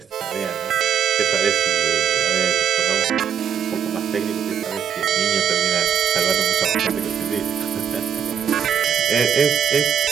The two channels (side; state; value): left; quieter; 8.2 dB